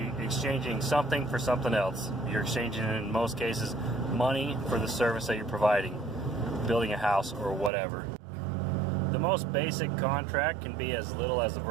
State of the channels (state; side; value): drops out; left; at 7.7 s